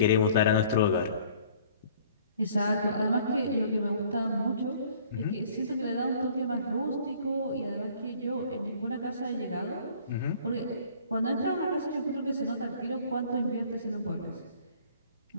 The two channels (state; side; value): inverted; both; correlation -0.55